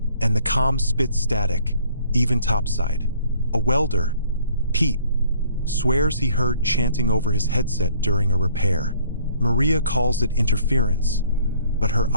and the comm spits static, even topside. A welder, Pete, swears he heard chanting over his headset during a repair. Maria calls it interference, but her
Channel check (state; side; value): inverted; both; correlation -0.59